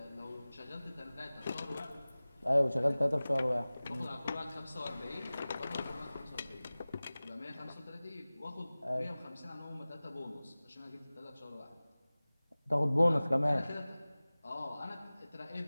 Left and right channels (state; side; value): inverted; both; correlation -0.98